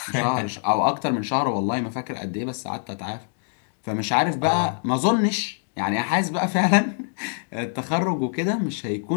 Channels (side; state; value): right; silent; digital silence